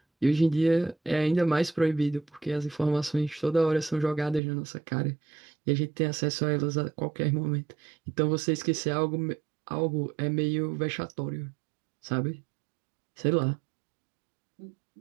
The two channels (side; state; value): left; drops out; at 4.4 s